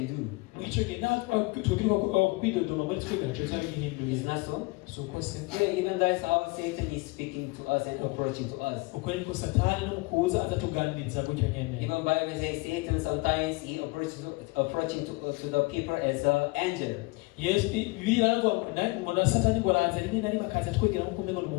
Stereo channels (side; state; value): right; quieter; 25.1 dB